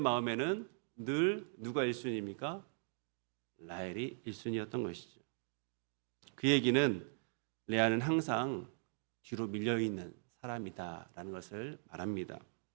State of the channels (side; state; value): left; silent; digital silence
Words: 늘 누가 1순위입니까? 라헬이 1순위였던 것이죠. 그 얘기는 레아는 항상 뒤로 밀려있는 사람이다라는 것을 말합니다.